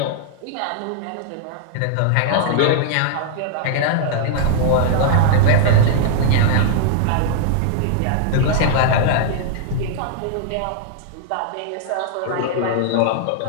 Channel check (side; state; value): both; different; correlation -0.01